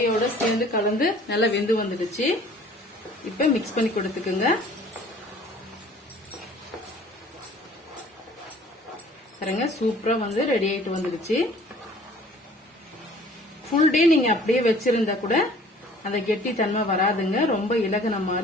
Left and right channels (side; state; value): both; normal; correlation 0.52